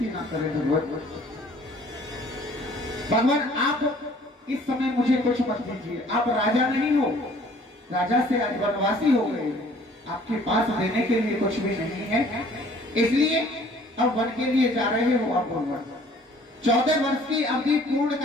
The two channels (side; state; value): both; normal; correlation 0.55